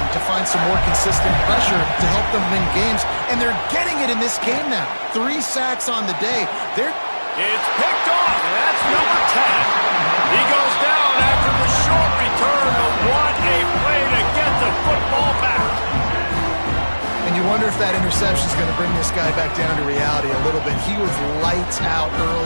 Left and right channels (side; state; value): both; inverted; correlation -1.00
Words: to find some more consistent pressure to help them win games, and they're getting it in this game now. 3 sacks on the day. It's picked off, and that's number 10. He goes down after the short return, but what a play to get the football back. And you wonder if that interception is going to bring this guy back down to reality a little bit. He was lights out